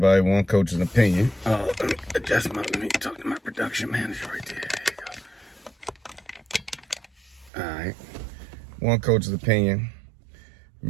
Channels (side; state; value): left; drops out; at 7.5 s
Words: One coach's opinion. Let me talk to my production manager right there. There you go. All right. One coach's opinion.